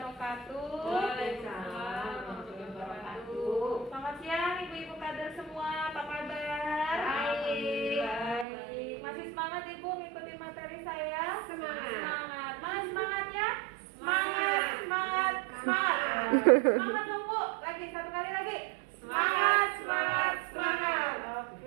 wabarakatuh. Waalaikumsalam warahmatullahi wabarakatuh. Selamat siang ibu-ibu kader semua, apa kabar? Baik. Masih semangat ibu mengikuti materi saya? Semangat. Semangat. Mana semangatnya? Semangat. Semangat. Semangat. Semangat dong bu. Lagi satu kali lagi. Semangat, semangat, semangat.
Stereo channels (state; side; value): drops out; left; at 8.5 s